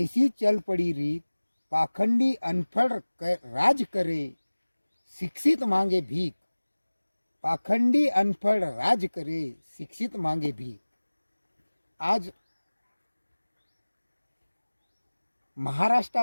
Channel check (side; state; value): both; inverted; correlation -1.00